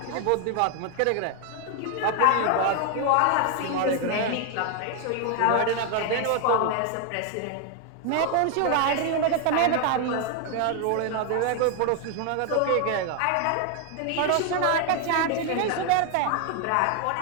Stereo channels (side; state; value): both; different; correlation 0.01